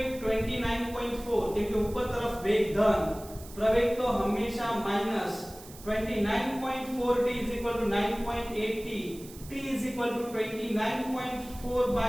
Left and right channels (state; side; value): noise; right; hiss, 18 dB below the sound